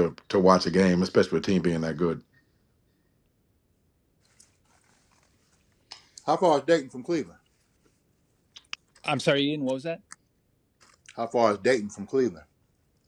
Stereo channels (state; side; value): identical; both; correlation 1.00